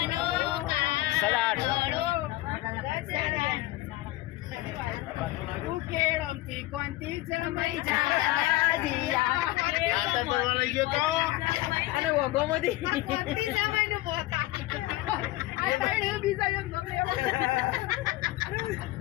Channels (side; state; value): right; quieter; 17.7 dB